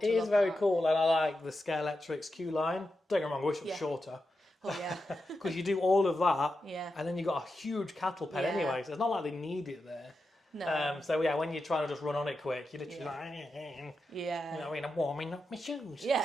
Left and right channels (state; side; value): normal; both; correlation 0.89